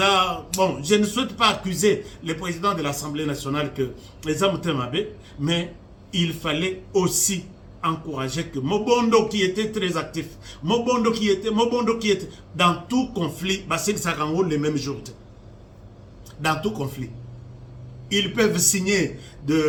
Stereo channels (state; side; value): identical; both; correlation 1.00